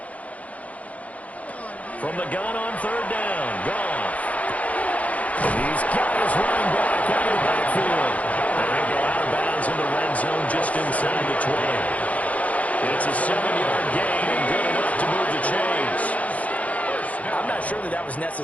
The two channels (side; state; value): right; late; 0.069 ms